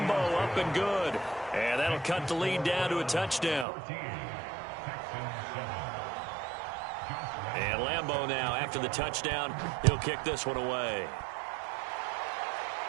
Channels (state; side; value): drops out; left; at 3.7 s